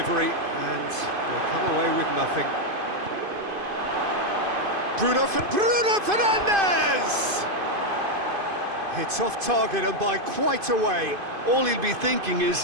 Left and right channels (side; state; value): left; late; 2.5 ms